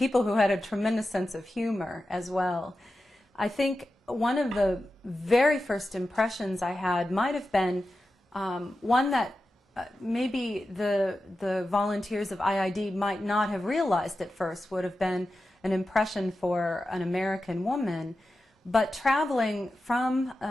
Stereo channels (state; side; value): normal; both; correlation 0.92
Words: who had a tremendous sense of humor as well. I think one of the very first impressions I had might have been one that maybe the volunteers of IID might not have realized at first, would have been an impression for an American woman, but traveling from